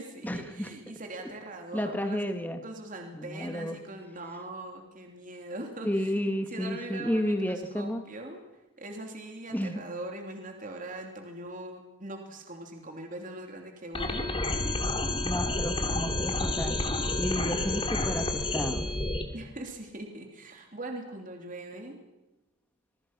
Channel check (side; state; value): both; normal; correlation 0.65